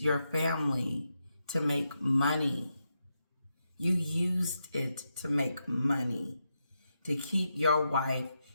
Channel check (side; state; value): both; inverted; correlation -0.85